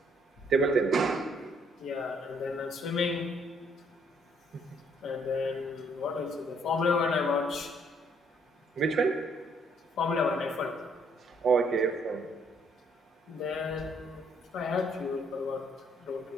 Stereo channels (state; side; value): normal; both; correlation 0.67